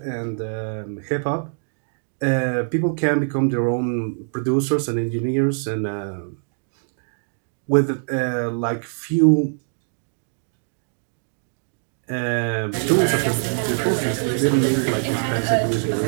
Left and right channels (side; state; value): left; silent; digital silence